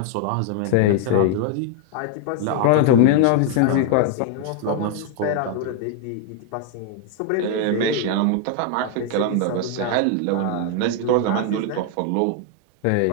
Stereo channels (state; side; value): different; both; correlation 0.00